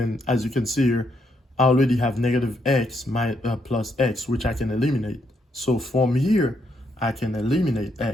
as you can see here, I already have negative x plus x, which I can eliminate. So from here, I can eliminate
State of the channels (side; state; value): both; normal; correlation 0.76